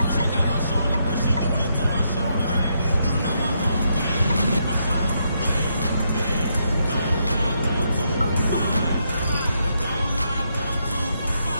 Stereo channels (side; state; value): both; inverted; correlation -0.78